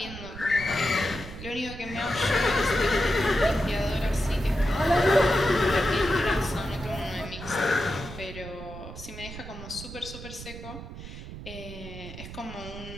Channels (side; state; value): right; noise; rumble, 12 dB below the sound